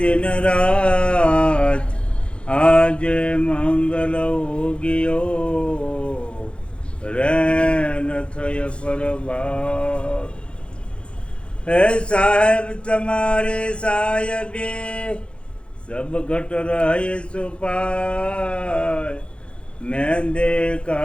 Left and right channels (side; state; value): right; late; 0.058 ms